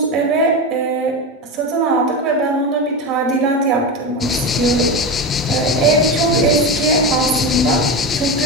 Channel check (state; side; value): normal; both; correlation 0.19